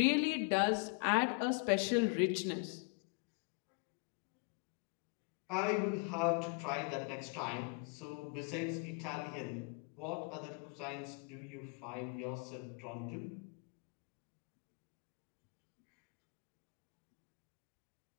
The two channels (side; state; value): right; quieter; 34.4 dB